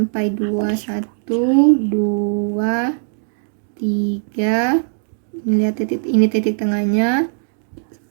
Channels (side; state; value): left; silent; digital silence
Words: 1, 2, 3. Lihat titik, ini titik tengahnya.